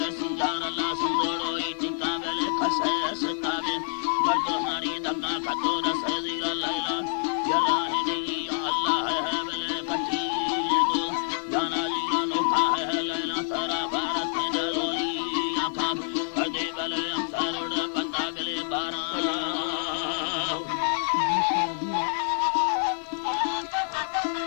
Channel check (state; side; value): silent; right; digital silence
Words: rasinjar Allah sundoro itika bele khasa sakabe bardo hari damna khato da sayira laila ya rahini ya Allah hai bele pati जाना लीला नोखा है लैला सारा भारत में डरोली आखा कदे बले अंसारोड बंदा बले बारा